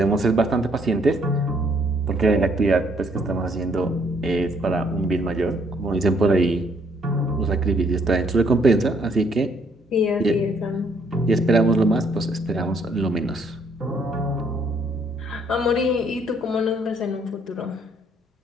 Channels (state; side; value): normal; both; correlation 0.67